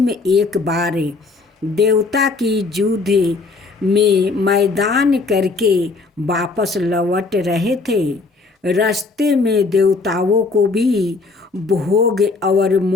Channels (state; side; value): quieter; right; 3.9 dB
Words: एक बार देवता की युद्ध में मैदान करके वापस लौट रहे थे। रास्ते में देवताओं को भी भोग और